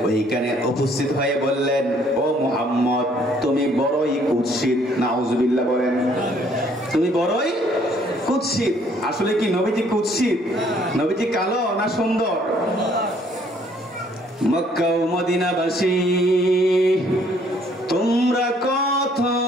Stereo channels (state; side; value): normal; both; correlation 0.63